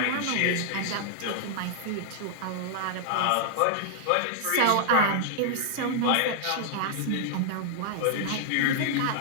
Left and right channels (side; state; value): both; different; correlation -0.01